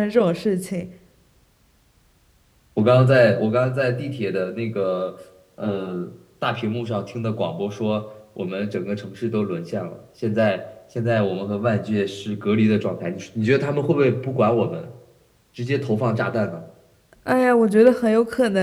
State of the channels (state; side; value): identical; both; correlation 1.00